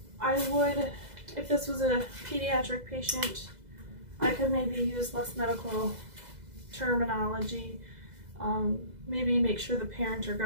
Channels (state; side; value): late; left; 2.0 ms